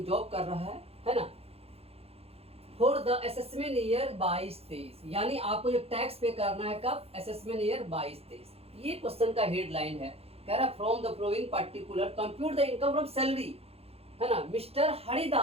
जॉब कर रहा है ना। फॉर द असेसमेंट ईयर 22-23, यानी आपको जो टैक्स पे करना है कब, असेसमेंट ईयर 22-23। ये क्वेश्चन का हेडलाइन है, कह रहा from the flowing particular compute the income from salary, है ना। मिस्टर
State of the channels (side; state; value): left; late; 0.29 ms